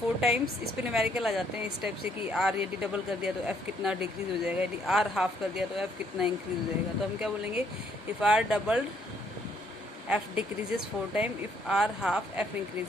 times, इस पर न्यूमेरिकल आ जाते हैं इस टाइप से कि आर यदि डबल कर दिया तो एफ कितना डिक्रीज हो जाएगा, यदि आर हाफ कर दिया तो एफ कितना इंक्रीज हो जाएगा। तो हम क्या बोलेंगे, if R doubled F decreases 4 time, if R half F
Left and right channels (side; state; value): both; normal; correlation 0.68